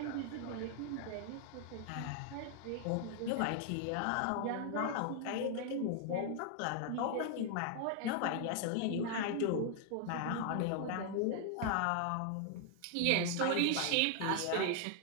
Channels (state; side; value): different; both; correlation 0.00